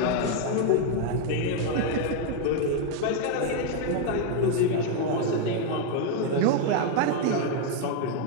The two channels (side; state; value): both; different; correlation 0.01